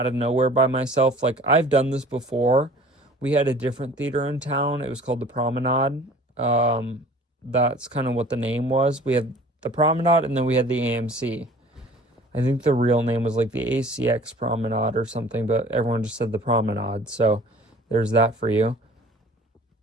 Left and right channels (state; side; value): normal; both; correlation 0.48